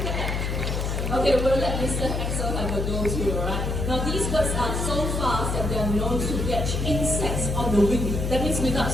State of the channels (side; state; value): left; noise; hum, 1 dB below the sound